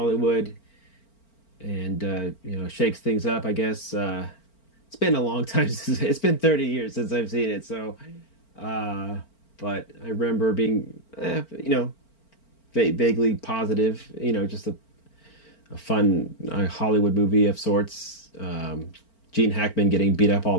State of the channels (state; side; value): late; right; 4.4 ms